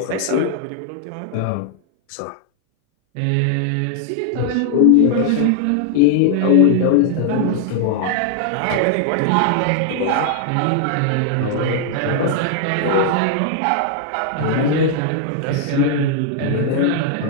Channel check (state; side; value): different; both; correlation 0.00